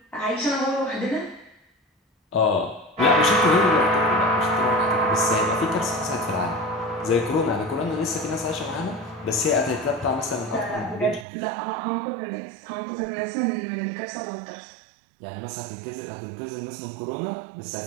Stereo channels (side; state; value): left; drops out; at 11.2 s